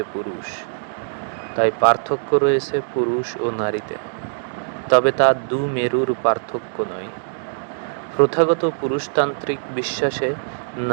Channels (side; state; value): left; silent; digital silence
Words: পুরুষ। তাই পার্থক্য রয়েছে পুরুষ ও নারীতে, তবে তা দু মেরুর পার্থক্য নয়। প্রথাগত পুরুষতান্ত্রিক বিশ্বাসে